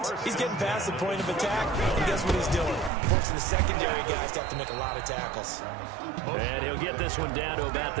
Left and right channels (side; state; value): left; drops out; at 2.9 s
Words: he's getting past the point of attack, and guess what he's doing? Forcing the secondary guys to have to make a lot of tackles. And he'll get this one down to about